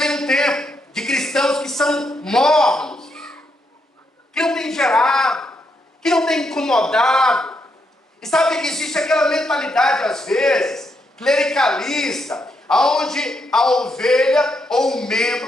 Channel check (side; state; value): both; normal; correlation 0.79